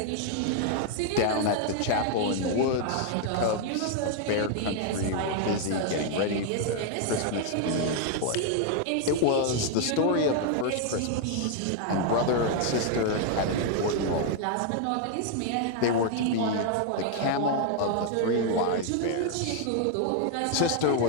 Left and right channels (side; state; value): both; different; correlation 0.00